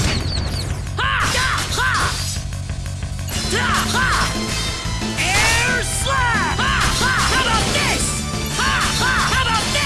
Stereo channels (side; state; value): both; identical; correlation 1.00